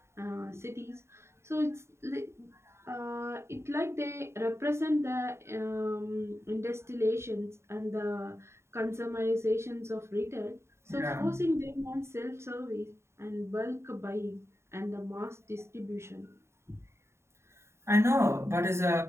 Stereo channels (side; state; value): left; late; 0.13 ms